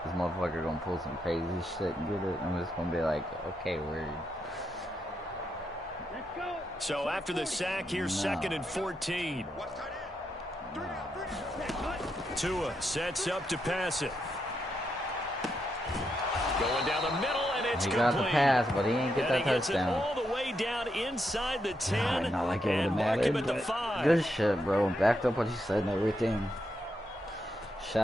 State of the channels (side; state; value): both; normal; correlation 0.82